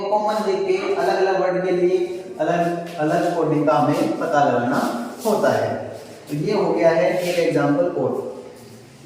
कॉमन देख के अलग अलग वर्ड के लिए अलग अलग कोडिंग का हमें पता लगाना होता है। तो ये हो गया है एक एग्जाम्पल कोड।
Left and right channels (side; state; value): both; identical; correlation 1.00